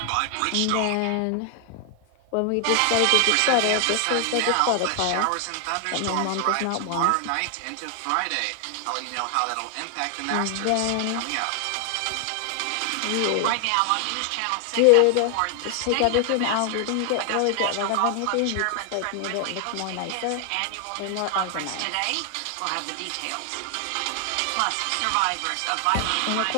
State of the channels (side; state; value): both; different; correlation 0.00